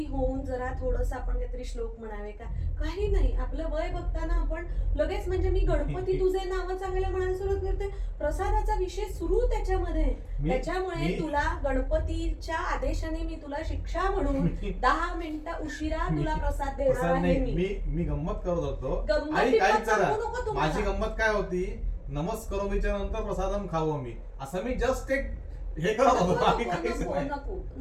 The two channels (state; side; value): identical; both; correlation 1.00